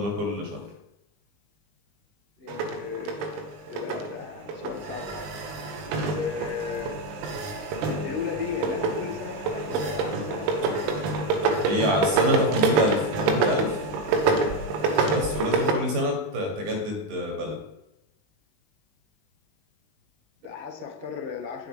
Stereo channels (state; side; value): late; left; 19 ms